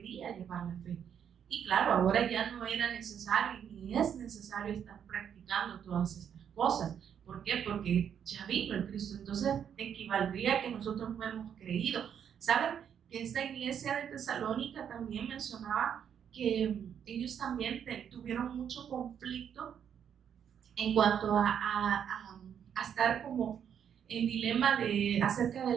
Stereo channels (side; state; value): left; quieter; 8.4 dB